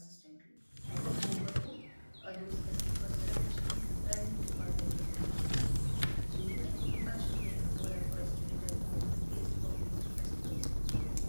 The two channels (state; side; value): inverted; both; correlation -1.00